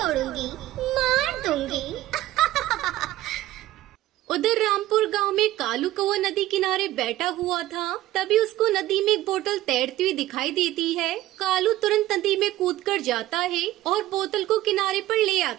मार दूंगी। उधर रामपुर गांव में कालू कौवा नदी किनारे बैठा हुआ था। तभी उसको नदी में एक बोतल तैरती हुई दिखाई देती है। कालू तुरंत नदी में कूदकर जाता है और बोतल को किनारे पर ले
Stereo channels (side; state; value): left; quieter; 15.3 dB